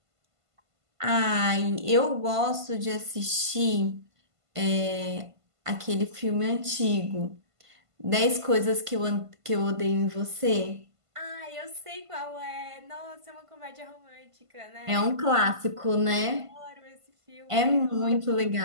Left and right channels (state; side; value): late; left; 1.5 ms